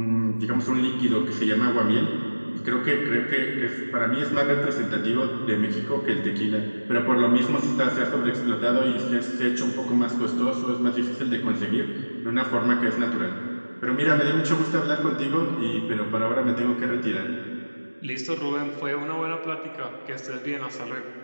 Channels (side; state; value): both; inverted; correlation -1.00